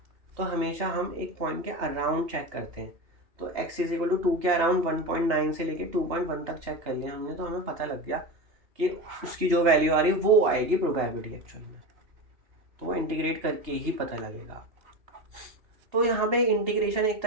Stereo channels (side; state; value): left; late; 2.8 ms